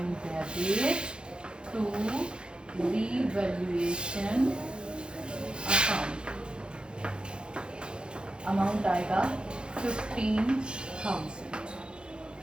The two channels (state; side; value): late; left; 0.051 ms